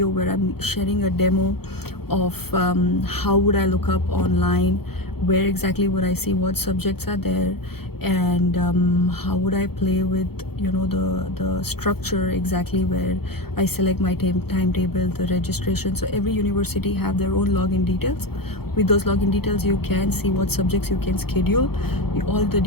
where I'm sharing a demo of how would I look up online, where exactly would I see what subjects are there, and how would I play with the structure exactly, where I select my timetable, the registration. So every university have their own login details. With those login details, you can see what subjects you can schedule, all the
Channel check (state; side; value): late; right; 0.96 ms